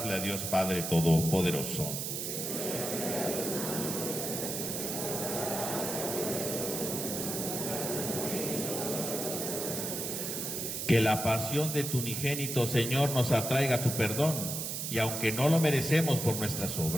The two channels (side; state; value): right; noise; hiss, 3 dB below the sound